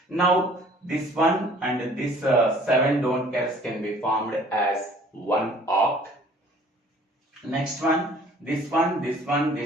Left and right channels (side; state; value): both; normal; correlation 0.53